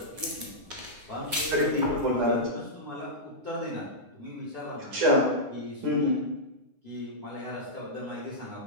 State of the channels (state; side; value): late; left; 9.6 ms